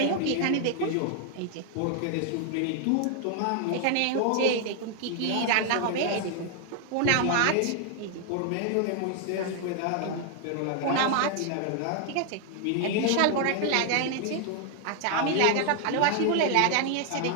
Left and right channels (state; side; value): different; both; correlation 0.00